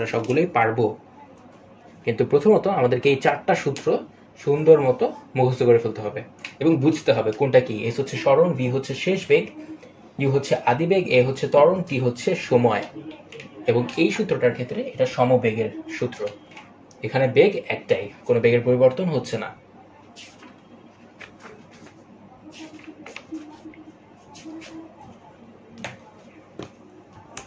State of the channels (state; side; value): identical; both; correlation 1.00